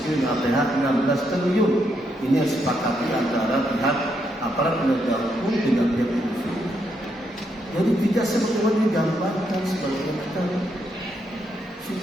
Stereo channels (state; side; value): normal; both; correlation 0.78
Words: Krim APH 16 triliun. Ini yang sepakati antara pihak aparat penegak hukum dengan pihak polisi. Jadi tidak sebagaimana digambarkan sebagai kita,